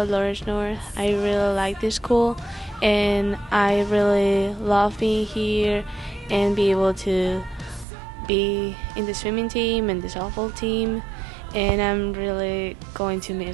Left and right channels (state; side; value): drops out; left; at 7.9 s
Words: Lawrence North. I really like this school, and I really love being here and be able to be in the swimming team and the softball team, and I'm really going to